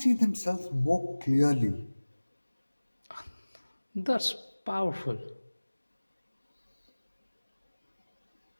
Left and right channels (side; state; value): both; inverted; correlation -1.00